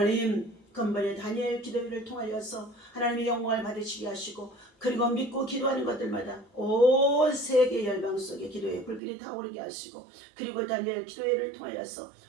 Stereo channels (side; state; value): left; drops out; at 9.0 s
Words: 근본의 다니엘 기도회를 통하여서 하나님의 영광을 받으시게 하시고 그리고 믿고 기도하는 것들마다 온 세계 열방 속에 기도의 불길이 타오르게 하시고 그리고 다니엘 기도회를 통하여서